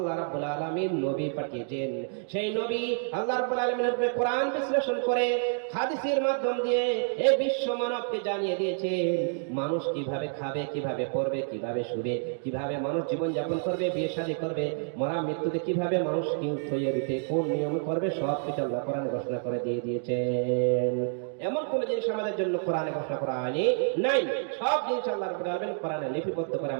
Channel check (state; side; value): silent; left; 59 dB below the other